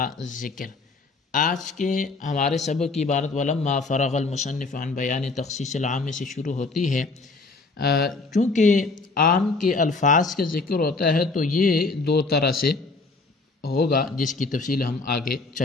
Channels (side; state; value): right; quieter; 3.7 dB